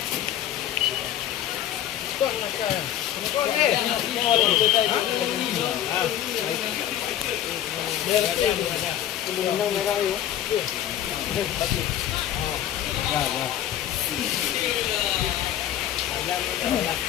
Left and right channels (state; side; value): quieter; right; 11.5 dB